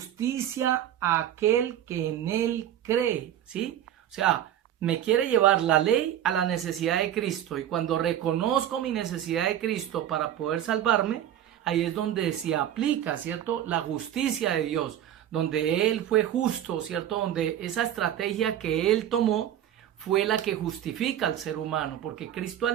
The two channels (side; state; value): left; quieter; 11.1 dB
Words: a aquel que en él cree, ¿sí? O sea, me quiere llevar la ley a la necesidad de Cristo. Y cuando reconozco mi necesidad de Cristo para poder salvarme, ahí es donde se aplica, ¿cierto? La justicia de Dios, donde Él fue justo, ¿cierto? Donde esa estrategia que Él tomó fue la que justifica al ser humano, porque Cristo